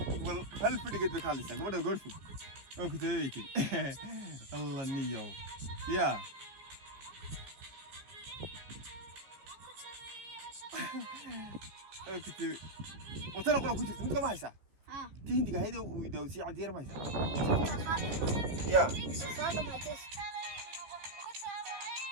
وال هل فني قد كالس قبل غرفه او كنت ويكي الله نيو يا كنت وترى كنت انت ما هيسا تهندي هيدا ودوسي على دير ما هيسا يا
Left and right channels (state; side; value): late; left; 14 ms